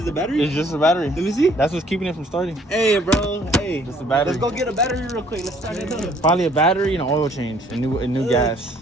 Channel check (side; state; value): both; normal; correlation 0.60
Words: the battery? It's just the battery. Let me see. That's what's keeping it from starting. Hey, bro. Hey. Just the battery. Let's go get a battery real quick. Let's start it up. Probably a battery and an oil change, and new gas.